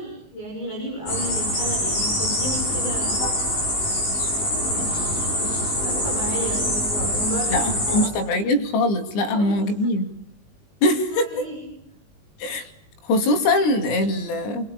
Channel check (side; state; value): right; late; 20 ms